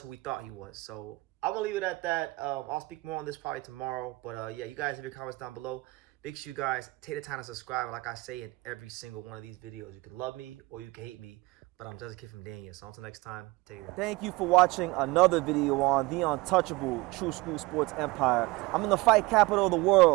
we thought he was. So I'm gonna leave it at that. I'll speak more on this probably tomorrow. But yeah, you guys leave your comments down below. Make sure you guys take the time to subscribe. Like I say in every single one of these videos, you can love me or you can hate me, but I'm just a kid from Dania. So until next time, take care. Thank you for watching another video on the untouchable True School Sports Empire. I'm in the fight capital of the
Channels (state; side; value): quieter; left; 22.3 dB